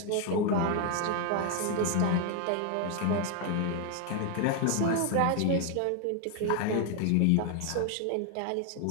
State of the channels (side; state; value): both; different; correlation 0.01